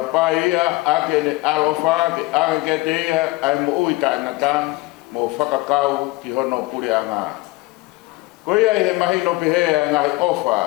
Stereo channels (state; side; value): quieter; right; 21.3 dB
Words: ake ne alofa ke ake ke teia ai mo uita nata mo whakakau ki hono puri anga koia he mahino pihea ngai